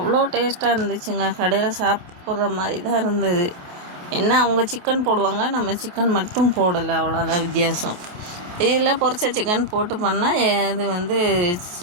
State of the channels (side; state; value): left; late; 28 ms